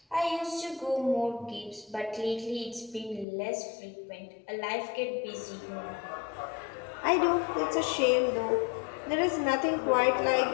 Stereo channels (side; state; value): right; drops out; at 3.2 s